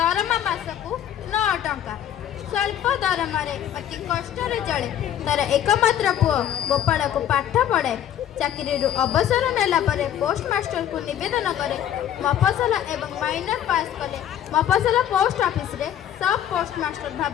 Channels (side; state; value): right; quieter; 10.6 dB